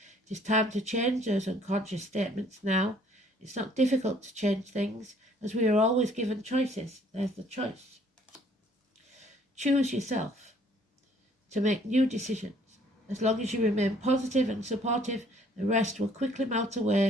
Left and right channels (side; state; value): both; normal; correlation 0.60